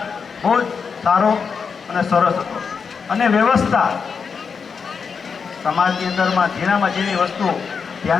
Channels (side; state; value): right; quieter; 5.8 dB